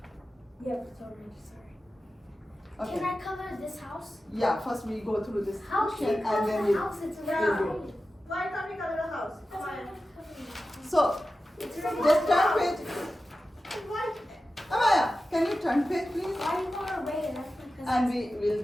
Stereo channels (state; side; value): normal; both; correlation 0.94